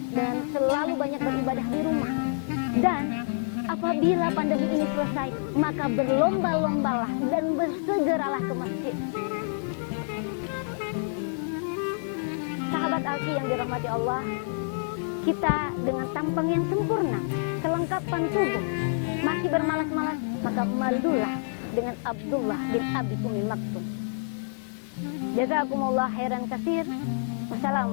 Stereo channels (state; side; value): silent; right; digital silence